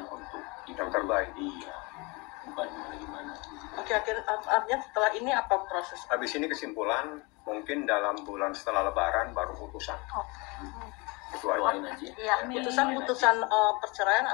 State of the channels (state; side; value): quieter; right; 27.3 dB